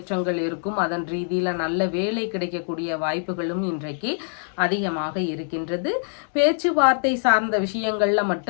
இருக்கும். அதன் ரீதியில் நல்ல வேலை கிடைக்கக்கூடிய வாய்ப்புகளும் இன்றைக்கு அதிகமாக இருக்கின்றது. பேச்சுவார்த்தை சார்ந்த விஷயங்கள்ல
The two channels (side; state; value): right; silent; digital silence